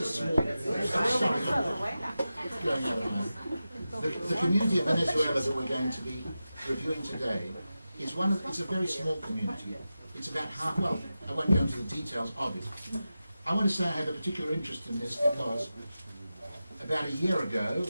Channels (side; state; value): both; inverted; correlation -0.93